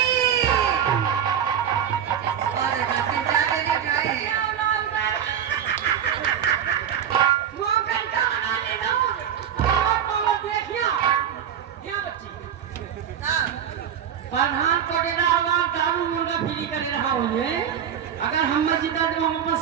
और देखा 3-4 जने उठाए हैं। प्रधान कोटेदार वाल दारू मुर्गा फ्री करे रहा हुए अगर हम जीता तो हम अपन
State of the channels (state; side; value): quieter; left; 9.0 dB